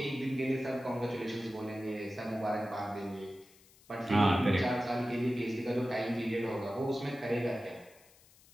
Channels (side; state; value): left; noise; hiss, 27 dB below the sound